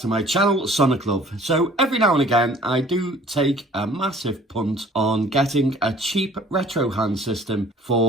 my channel, Sonic Love. So every now and again I do take a massive punt on getting a cheap retro hand system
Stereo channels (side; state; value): both; normal; correlation 0.52